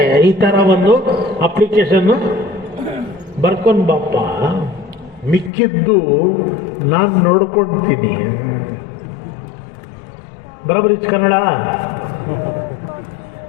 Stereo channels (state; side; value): drops out; right; at 5.5 s